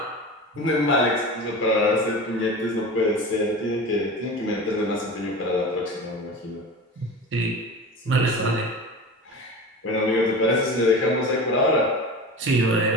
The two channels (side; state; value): both; normal; correlation 0.32